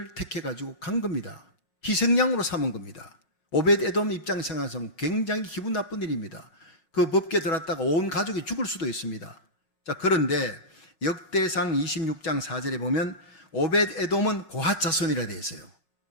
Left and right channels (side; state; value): right; late; 5.5 ms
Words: 택해가지고 간 겁니다. 희생양으로 삼은 겁니다. 오벳에돔 입장에서 굉장히 기분 나쁜 일입니다. 그 법궤 들었다가 온 가족이 죽을 수도 있습니다. 자, 그런데 역대상 26장 4절에 보면 오벳에돔은 고앗 자손이라 되어 있어요.